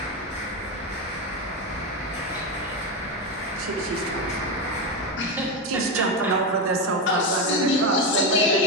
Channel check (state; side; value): normal; both; correlation 0.12